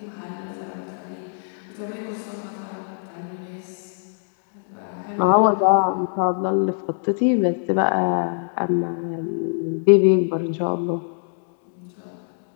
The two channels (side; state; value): right; silent; digital silence